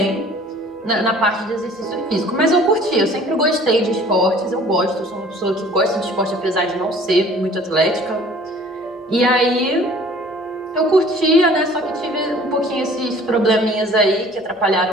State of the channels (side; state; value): both; normal; correlation 0.51